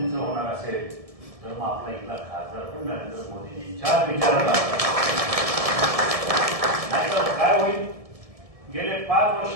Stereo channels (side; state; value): left; late; 1.7 ms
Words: होणार असेल, तर मग आपला इथला खासदार पण नरेंद्र मोदींच्याच विचाराला नाही तर काय होईल. गेले 5